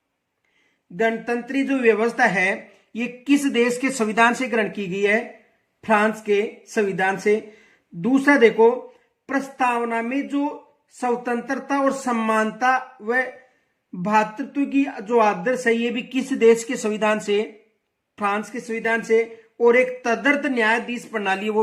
गणतंत्री जो व्यवस्था है ये किस देश के संविधान से ग्रहण की गई है? फ्रांस के संविधान से। दूसरा देखो, प्रस्तावना में जो स्वतंत्रता और समानता व भ्रातृत्व की जो आदर्श है ये भी किस देश के संविधान से? फ्रांस के संविधान से। और एक तदर्थ न्यायाधीश प्रणाली है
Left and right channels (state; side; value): identical; both; correlation 1.00